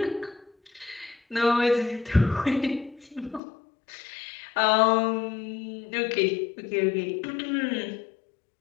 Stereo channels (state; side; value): drops out; right; at 3.4 s